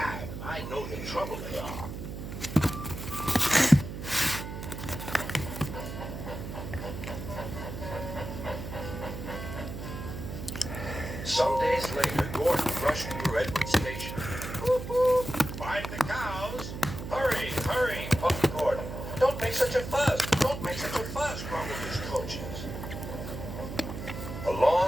I know the trouble they are. Some days later, Gordon rushed through Edward's station. Whoop, whoop. Find the cows. Hurry, hurry, puffed Gordon. Don't make such a fuss. Don't make such a fuss, grumbled his coaches. A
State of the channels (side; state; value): right; noise; hum, 8 dB below the sound